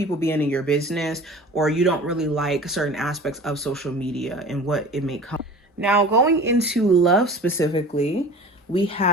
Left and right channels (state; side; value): normal; both; correlation 0.40